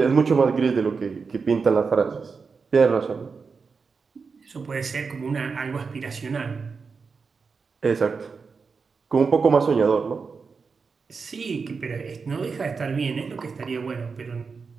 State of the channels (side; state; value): left; quieter; 5.1 dB